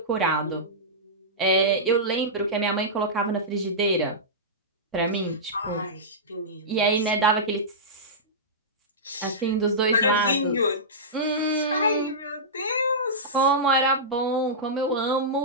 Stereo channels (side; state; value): both; normal; correlation -0.15